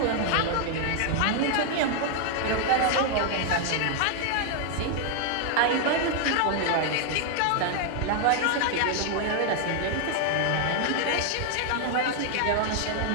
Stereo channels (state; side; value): different; both; correlation 0.00